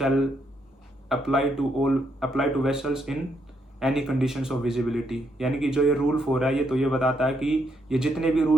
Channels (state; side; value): normal; both; correlation 0.76